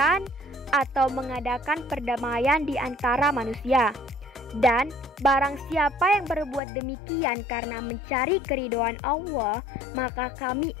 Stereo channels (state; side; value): drops out; right; at 6.6 s